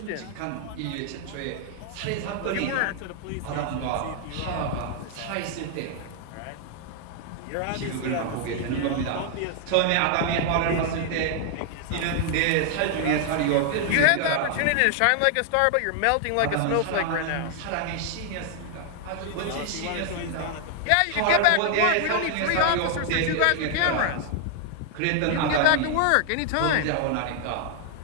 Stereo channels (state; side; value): different; both; correlation 0.00